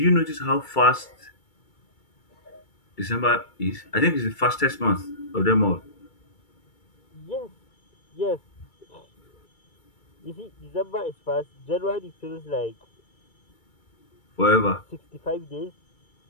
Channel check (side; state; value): right; late; 2.3 ms